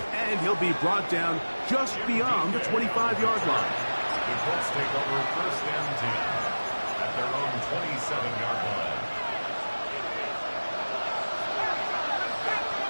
And he'll be brought down just beyond the 25-yard line. The Colts take over 1st and 10 at their own 27-yard line.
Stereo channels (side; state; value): both; inverted; correlation -1.00